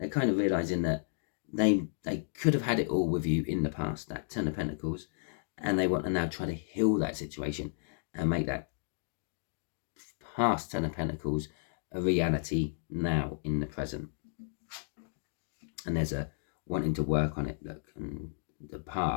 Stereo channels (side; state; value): right; silent; digital silence